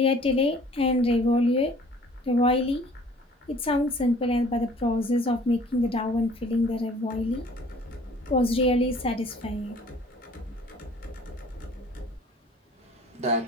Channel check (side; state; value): both; normal; correlation 0.52